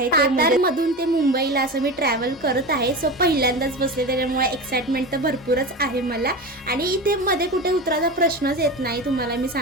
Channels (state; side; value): normal; both; correlation 0.26